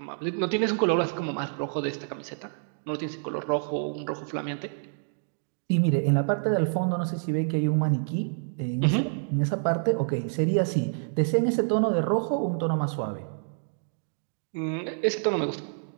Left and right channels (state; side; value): silent; left; digital silence